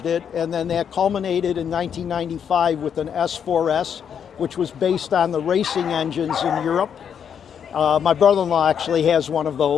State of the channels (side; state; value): right; quieter; 7.9 dB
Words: it, and then that culminated in 1995 with an S4S, which was based on the racing engines in Europe. My brother-in-law actually has one of